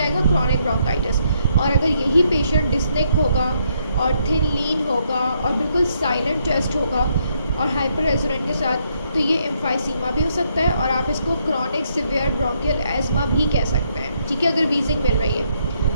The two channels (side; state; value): both; inverted; correlation -0.74